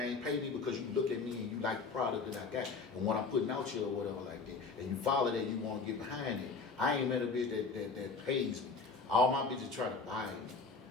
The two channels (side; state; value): right; quieter; 4.4 dB